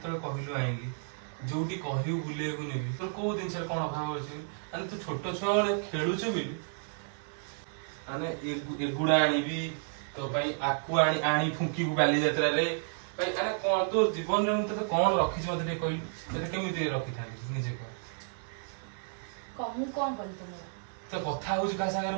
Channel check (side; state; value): left; silent; digital silence